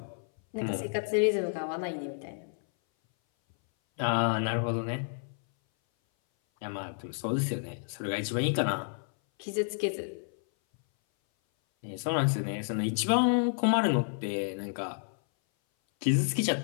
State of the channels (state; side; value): silent; right; 58 dB below the other